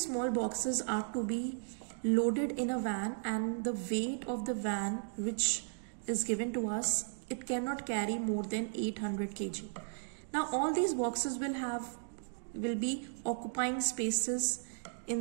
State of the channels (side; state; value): left; silent; digital silence